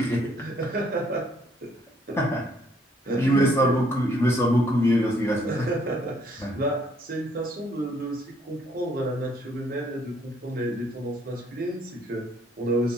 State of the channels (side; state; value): both; normal; correlation 0.66